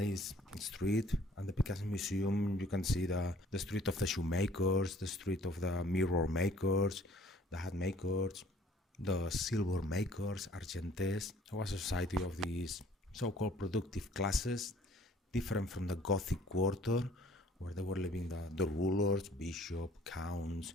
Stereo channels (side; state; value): both; normal; correlation 0.56